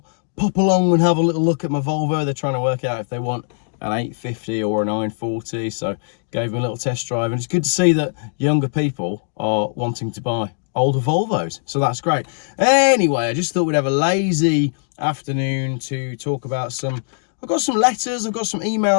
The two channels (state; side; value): silent; right; digital silence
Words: pop along and have a little look at my Volvo. They're trying to work out if they want an 850 or a 940, so gave them a little test drive, and it's good to see that younger people are wanting to buy older Volvos, so that's great. Anyway, I just thought we'd have a lazy afternoon to talk about I've got some letters, I've got some